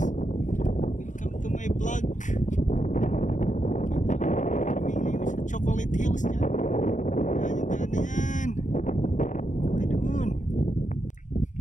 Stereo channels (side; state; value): right; late; 0.36 ms